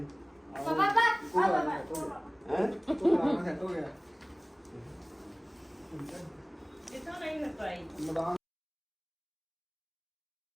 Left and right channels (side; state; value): both; identical; correlation 1.00